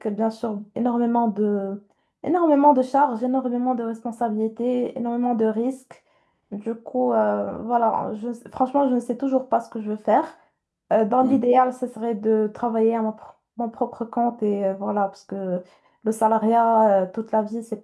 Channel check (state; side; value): identical; both; correlation 1.00